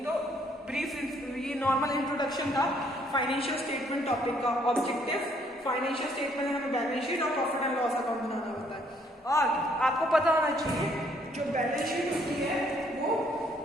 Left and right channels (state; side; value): normal; both; correlation 0.66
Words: तो ब्रीफ, ये नॉर्मल इंट्रोडक्शन था फाइनेंशियल स्टेटमेंट टॉपिक का। ऑब्जेक्टिव फाइनेंशियल स्टेटमेंट में हमें बैलेंस शीट और प्रॉफिट एंड लॉस अकाउंट बनाना होता है। और आपको पता होना चाहिए जो बैलेंस शीट होती है वो